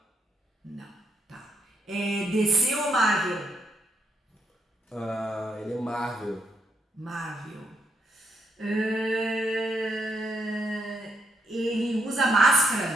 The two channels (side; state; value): both; normal; correlation 0.78